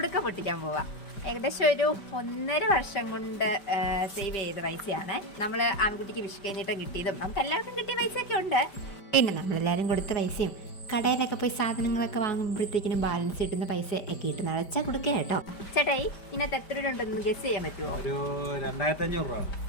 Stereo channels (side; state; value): right; late; 5.0 ms